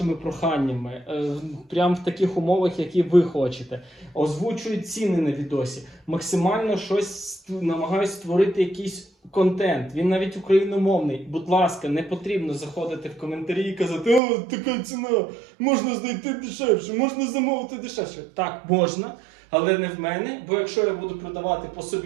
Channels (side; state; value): left; drops out; at 14.2 s